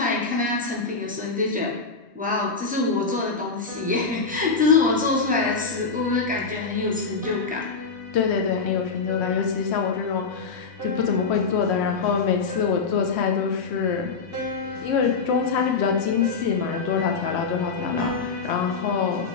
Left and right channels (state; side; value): quieter; right; 4.7 dB